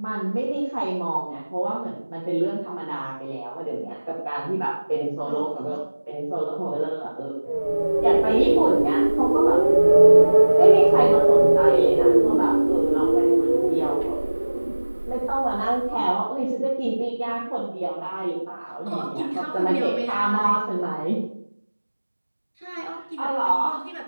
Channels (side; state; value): both; inverted; correlation -1.00